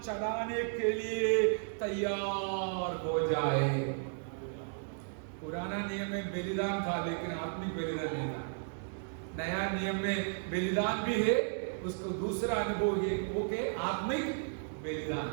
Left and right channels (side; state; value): left; silent; 55 dB below the other